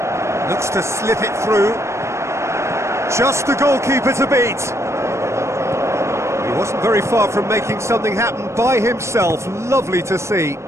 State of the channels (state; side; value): late; left; 0.13 ms